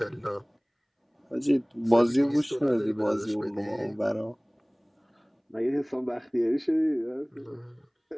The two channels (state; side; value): identical; both; correlation 1.00